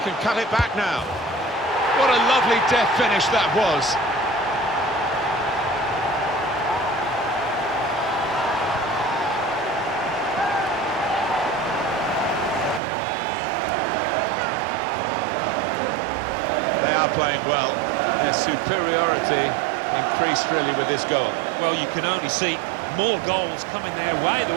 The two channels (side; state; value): left; drops out; at 12.8 s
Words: can cut it back now. What a lovely deft finish that was. They are playing well. Their superiority increased really with this goal. Well, you can only see more goals coming their way, the